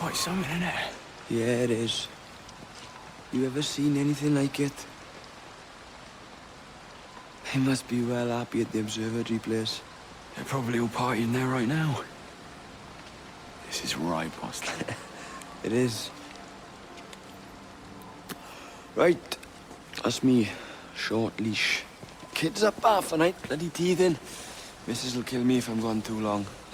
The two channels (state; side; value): identical; both; correlation 1.00